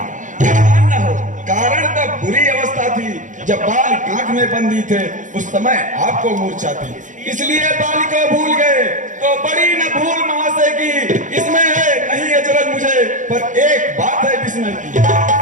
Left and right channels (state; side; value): late; left; 0.37 ms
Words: न हो, कारण तब बुरी अवस्था थी जब बाल कांख में बंदी थे, उस समय आपको मूर्छा थी, इसलिए बाल को भूल गए। तो बड़ी न भूल महाशय की इसमें है, नहीं अचरज मुझे, पर एक बात है विस्मय की।